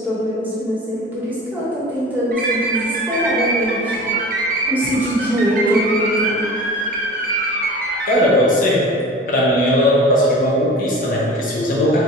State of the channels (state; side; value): normal; both; correlation 0.38